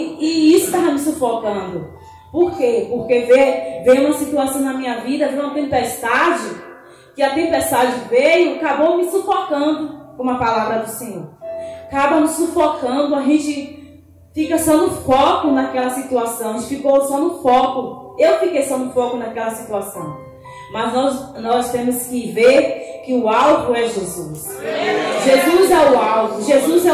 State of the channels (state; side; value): identical; both; correlation 1.00